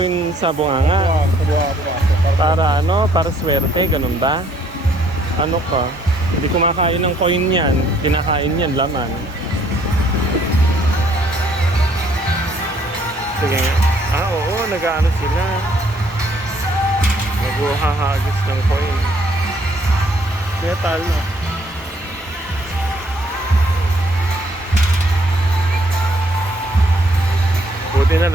sa bunganga. Para ano? Para swerte, ganun ba? Ano ka? Hindi kumakain ng coin yan. Kinakain yan, laman. Sige nga. Ah, oo, nag-ano sila. Nag-uhahagis ng coin. Metal, no? Buti na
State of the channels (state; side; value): normal; both; correlation 0.65